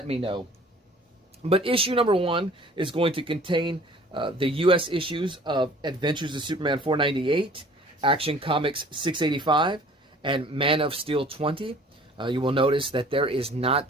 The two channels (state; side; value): normal; both; correlation 0.51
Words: me know. But issue number 1 is going to contain the U.S. issues of Adventures of Superman 498, Action Comics 685, and Man of Steel 20. You will notice that there is not